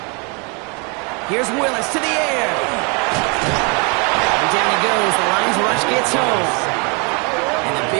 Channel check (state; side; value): quieter; left; 32.7 dB